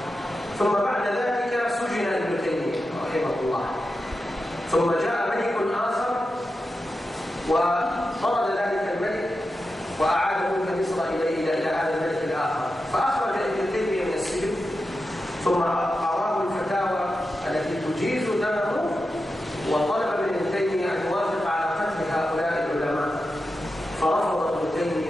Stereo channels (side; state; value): both; normal; correlation 0.90